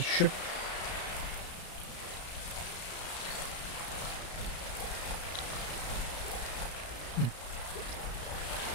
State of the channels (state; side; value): late; right; 34 ms